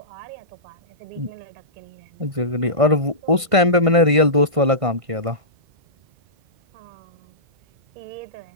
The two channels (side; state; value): left; late; 1.5 ms